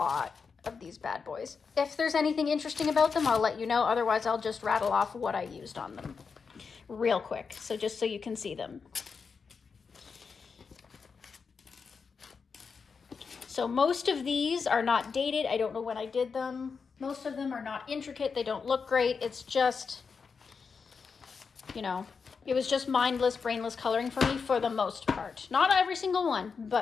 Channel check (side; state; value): right; quieter; 5.4 dB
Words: of these bad boys. If there's anything interesting about them, I'll let you know. Otherwise, I'll just rattle off what I used on them real quick. So just so you can see them. So So most of these are not dated. I don't know when I did them. Most of them are not intricate. They don't look great. It's just, you know, it was just mindless, brainless coloring for me for the most part. Not every single one,